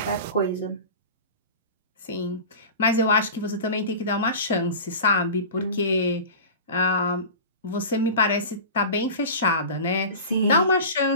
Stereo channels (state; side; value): inverted; both; correlation -0.33